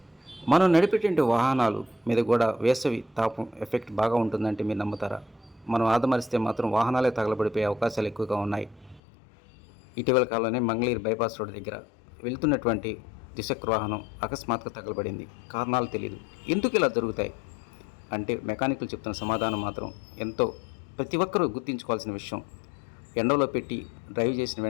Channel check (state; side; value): drops out; right; at 9.0 s